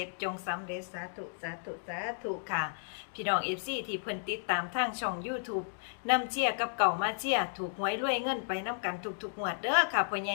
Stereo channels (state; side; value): silent; right; digital silence